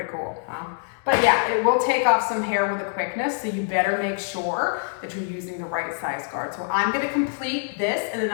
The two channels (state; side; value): silent; right; digital silence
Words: cool, huh? But yeah, it will take off some hair with a quickness, so you better make sure that you're using the right size guard. So I'm gonna complete this and then